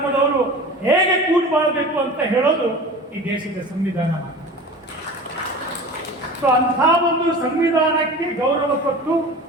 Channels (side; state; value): both; normal; correlation 0.36